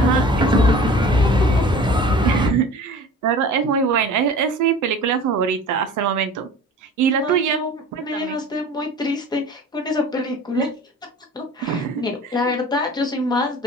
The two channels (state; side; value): normal; both; correlation 0.42